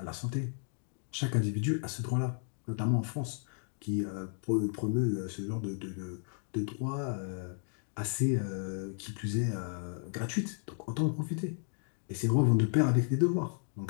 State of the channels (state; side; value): silent; right; 55 dB below the other